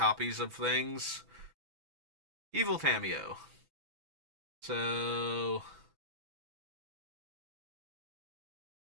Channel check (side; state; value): left; late; 6.0 ms